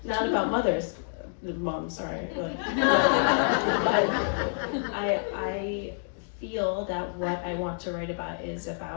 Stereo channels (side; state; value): right; silent; digital silence